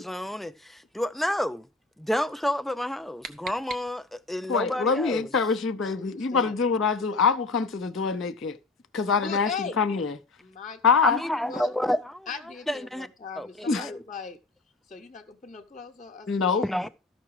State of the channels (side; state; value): right; quieter; 3.7 dB